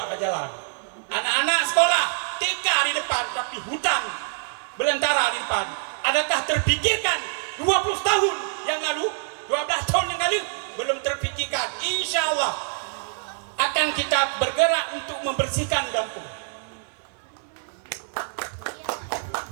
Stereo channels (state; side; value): silent; left; digital silence